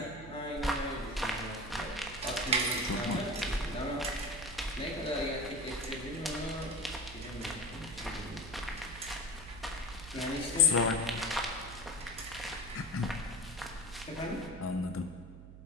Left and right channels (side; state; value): right; noise; hum, 14 dB below the sound